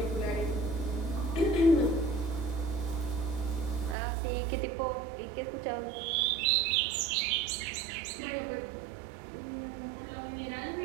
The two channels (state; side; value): drops out; left; at 4.0 s